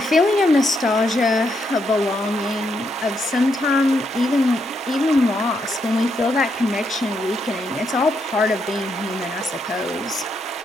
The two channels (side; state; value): both; normal; correlation 0.78